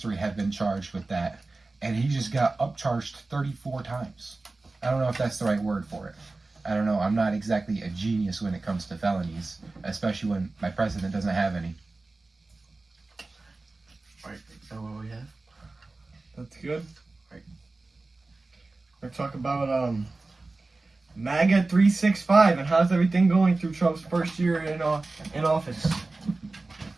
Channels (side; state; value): left; quieter; 3.4 dB